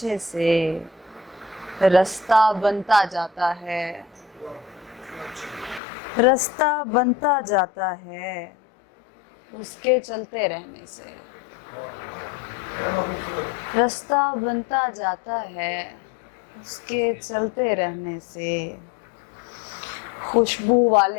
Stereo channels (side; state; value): right; drops out; at 5.8 s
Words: से। रास्ता बनता जाता है, रास्ता बनता जाता है, उसके चलते रहने से। रास्ता बनता जाता है, उसके चलते रहने से। खुशबू